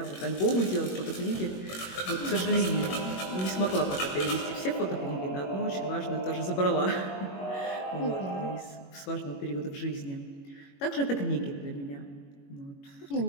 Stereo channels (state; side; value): late; right; 21 ms